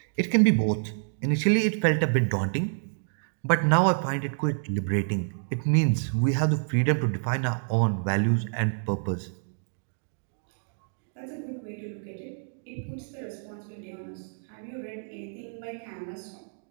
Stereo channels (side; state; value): left; silent; digital silence